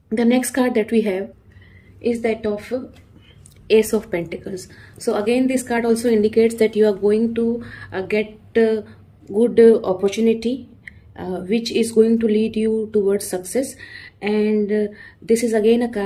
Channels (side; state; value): both; identical; correlation 1.00